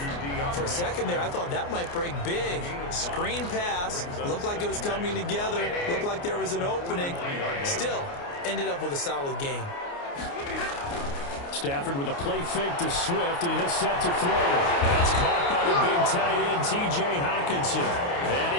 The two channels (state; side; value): late; right; 29 ms